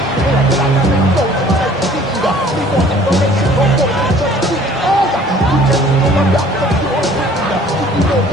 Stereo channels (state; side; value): normal; both; correlation 0.53